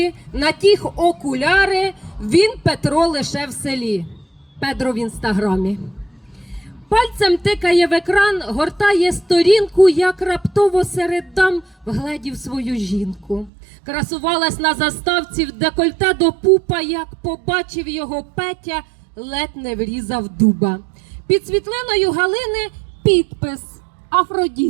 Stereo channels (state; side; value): drops out; left; at 13.5 s